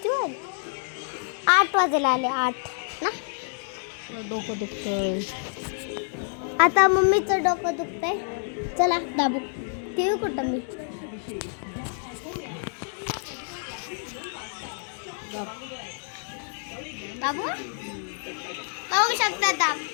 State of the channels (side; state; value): right; silent; 60 dB below the other